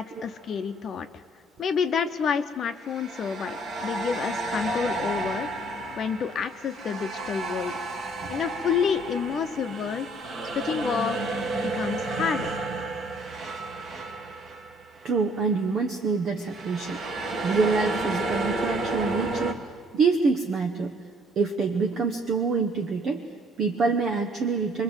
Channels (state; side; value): normal; both; correlation 0.60